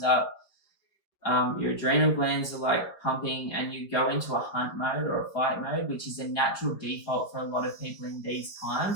up, your adrenal glands are like pumping, and you go into a hunt mode or a fight mode, which is a natural default for a lot of people in these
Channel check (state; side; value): late; right; 4.8 ms